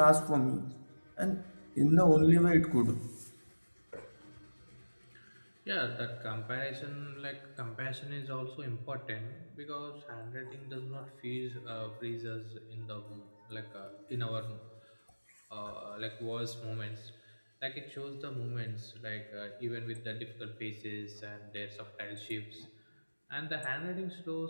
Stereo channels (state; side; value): inverted; both; correlation -1.00